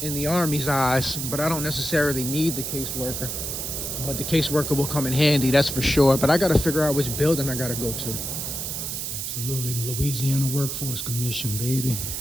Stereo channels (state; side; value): noise; right; hiss, 4 dB below the sound